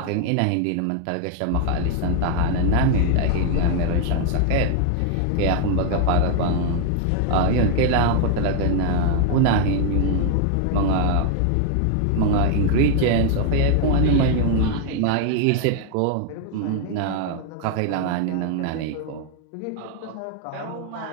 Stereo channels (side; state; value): both; different; correlation 0.00